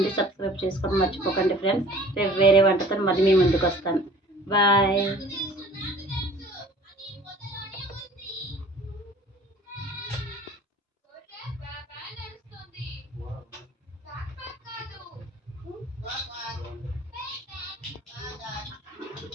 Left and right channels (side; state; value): both; normal; correlation 0.48